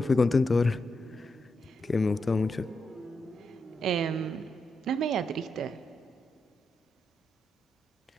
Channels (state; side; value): normal; both; correlation 0.84